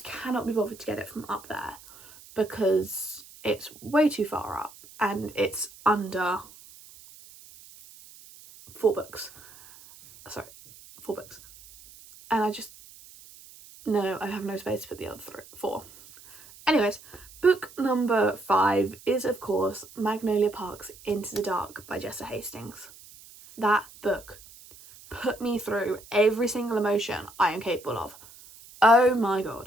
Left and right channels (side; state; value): right; noise; hiss, 21 dB below the sound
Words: cannot be bothered to get it from up there because it's way too far up and it's under 4 books. Sorry, 4 books. And I have no space to put the other 4. Anyways, book number 5 is, of course, Magnolia Park's Into the Dark by Jessa Hastings. That book put me through every single emotion I am capable of. Oh my